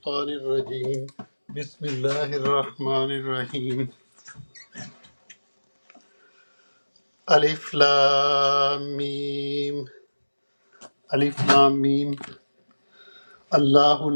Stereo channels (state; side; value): inverted; both; correlation -1.00